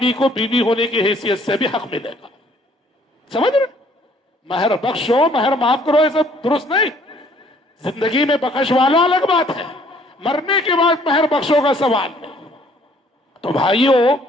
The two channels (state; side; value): normal; both; correlation 0.60